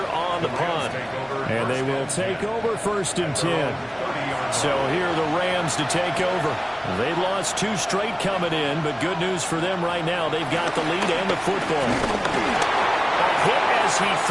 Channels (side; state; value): both; identical; correlation 1.00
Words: on the punt. And they will take over 1st and 10. So here are the Rams to take over. They've lost 2 straight coming in, but good news for them right now. They've got the lead and the football. A hit as he